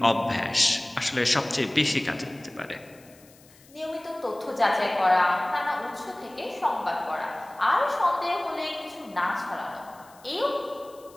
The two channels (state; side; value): noise; left; hiss, 26 dB below the sound